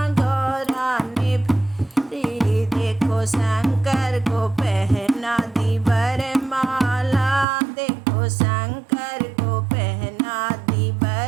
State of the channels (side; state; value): left; drops out; at 7.5 s